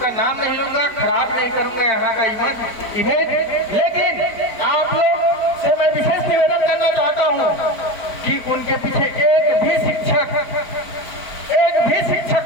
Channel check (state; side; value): late; right; 4.5 ms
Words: नाम नहीं लूंगा, खराब नहीं करूंगा यहाँ का इमेज, लेकिन आप लोग से मैं विशेष निवेदन करना चाहता हूँ कि उनके पीछे एक भी शिक्षक